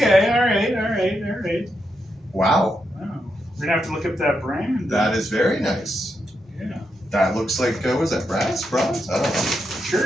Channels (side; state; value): both; normal; correlation 0.83